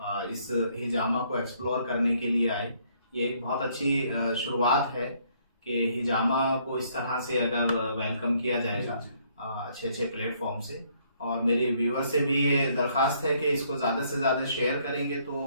इस हिजामा को एक्सप्लोर करने के लिए आए। ये एक बहुत अच्छी शुरुआत है कि हिजामा को इस तरह से अगर वेलकम किया जाएगा अच्छे अच्छे प्लेटफॉर्म से। और मेरे व्यूअर से भी ये दरख्वास्त है कि इसको ज़्यादा से ज़्यादा शेयर करेंगे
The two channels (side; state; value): both; inverted; correlation -0.67